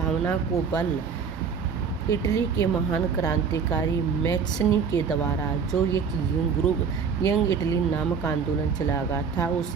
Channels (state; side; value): quieter; left; 6.1 dB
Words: को बल इटली के महान क्रांतिकारी मैज़नी के द्वारा जो एक यंग इटली नामक आंदोलन चलाया गया था, उस